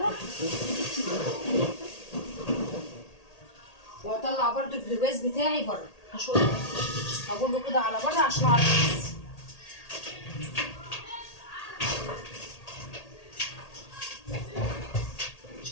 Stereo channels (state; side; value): late; right; 1.8 ms